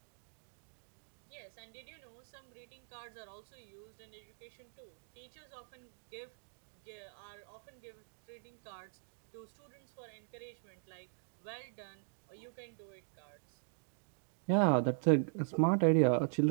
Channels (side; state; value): left; silent; digital silence